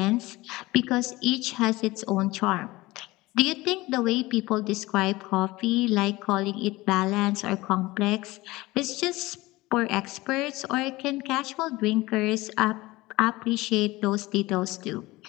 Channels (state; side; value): quieter; right; 20.1 dB